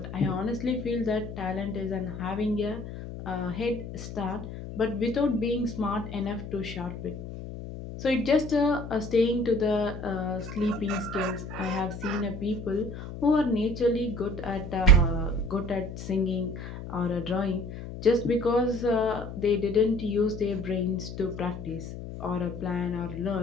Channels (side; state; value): left; noise; hum, 10 dB below the sound